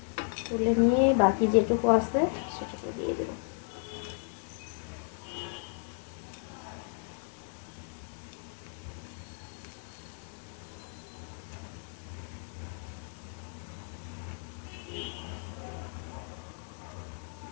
তুলে নিয়ে বাকি যেটুকু আছে সেটুকু দিয়ে দেবো।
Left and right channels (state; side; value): silent; right; 55 dB below the other